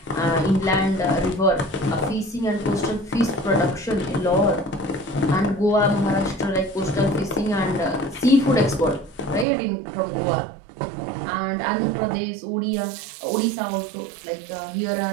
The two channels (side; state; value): left; drops out; at 9.5 s